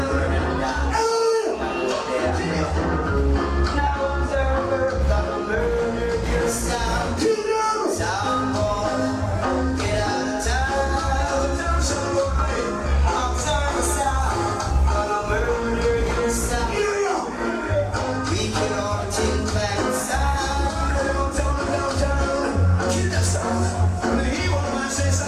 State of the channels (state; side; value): identical; both; correlation 1.00